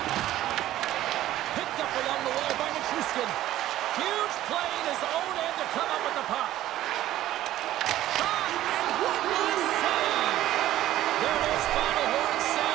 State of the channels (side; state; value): left; quieter; 13.9 dB